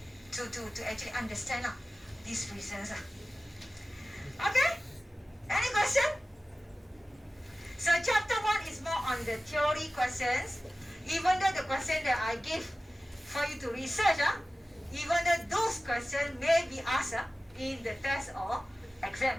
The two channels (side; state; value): both; normal; correlation 0.96